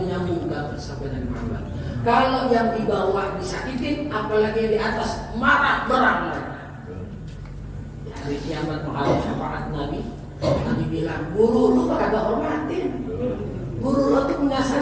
sampai Nabi Muhammad. Kalau yang di bawah disakitin, apalagi yang di atas marah berang. Di hari kiamat menghadap syafaat Nabi, Nabi bilang, guru lu kagak hormatin. Guru lu tuh punya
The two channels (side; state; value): both; identical; correlation 1.00